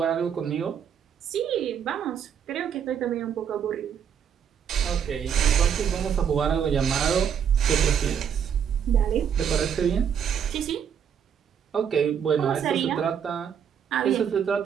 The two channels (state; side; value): quieter; left; 8.0 dB